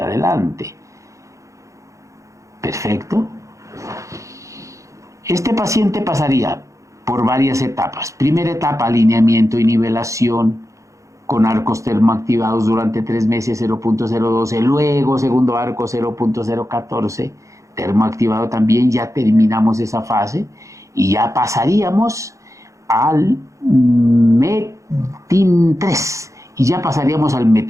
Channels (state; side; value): late; left; 0.15 ms